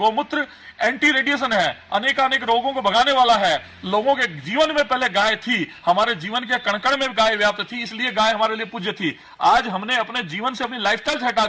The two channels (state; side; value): identical; both; correlation 1.00